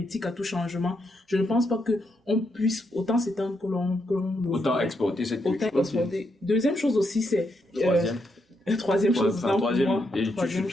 à tout changement, je ne pense pas qu'on puisse autant s'étendre que l'on autant exporter cette culture. Deuxième chose aussi, c'est... Troisième chose.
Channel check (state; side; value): normal; both; correlation 0.80